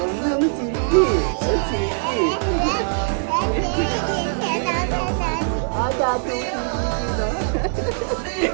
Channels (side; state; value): left; silent; 62 dB below the other